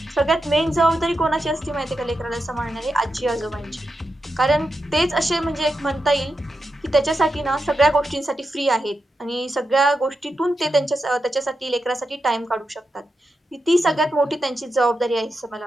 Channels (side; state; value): both; normal; correlation 0.87